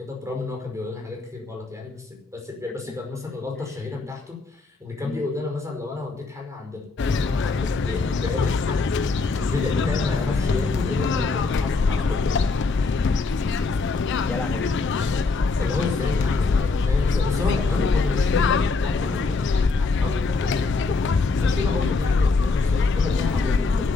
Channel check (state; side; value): quieter; right; 4.0 dB